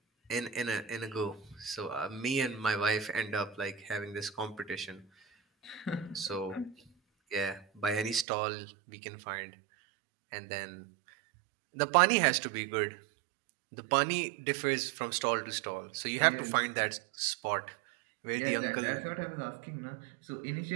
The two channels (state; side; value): drops out; left; at 8.2 s